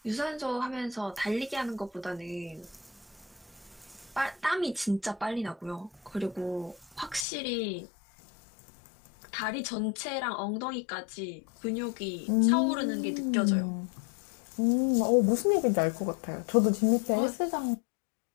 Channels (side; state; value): right; drops out; at 7.2 s